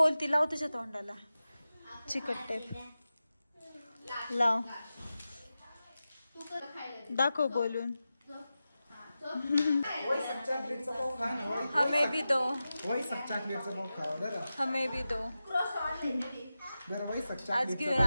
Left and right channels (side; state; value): both; inverted; correlation -0.93